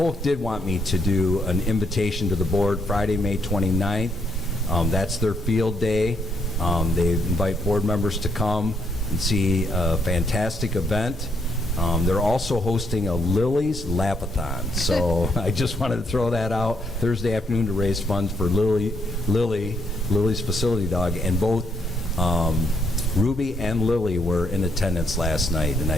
did want me to do an invitation to the board Friday, May 29th. That's their field day. They invite board members to come and see a fantastic event. They're also hosting a Lily's Lapathon. So I just wanted to throw that out Thursday afternoon to raise funds for Lily's facility dog. And both Ruby and Lily were in attendance last night, and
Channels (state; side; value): normal; both; correlation 0.74